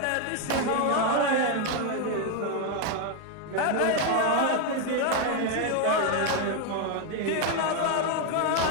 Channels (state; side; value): different; both; correlation 0.01